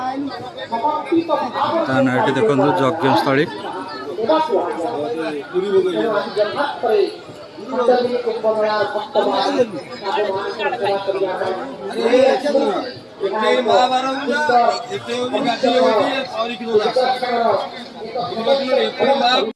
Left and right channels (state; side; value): identical; both; correlation 1.00